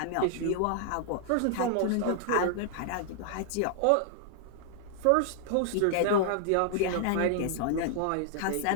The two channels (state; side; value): different; both; correlation -0.01